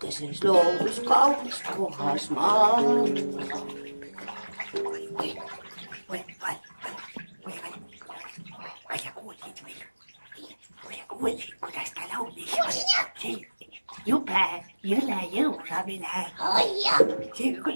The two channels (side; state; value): both; inverted; correlation -1.00